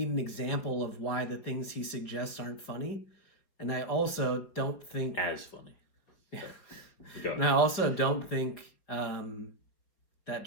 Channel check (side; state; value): right; late; 5.0 ms